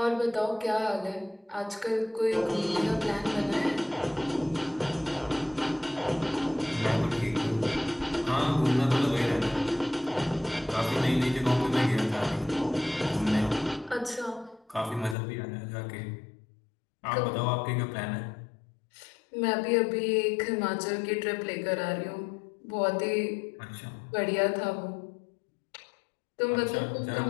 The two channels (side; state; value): right; drops out; at 15.2 s